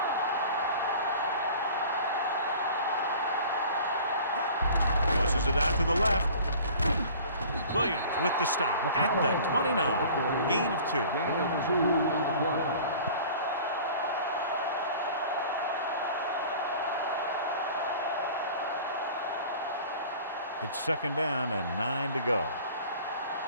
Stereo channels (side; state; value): both; inverted; correlation -0.45